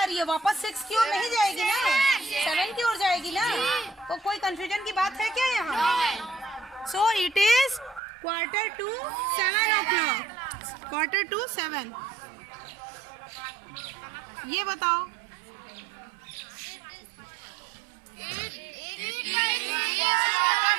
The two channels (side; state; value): left; drops out; at 8.0 s